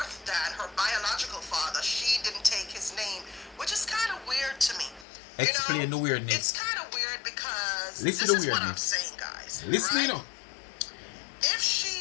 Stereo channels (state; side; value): drops out; right; at 5.1 s